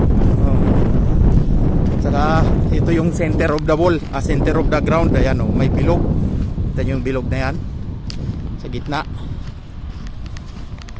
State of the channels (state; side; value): identical; both; correlation 1.00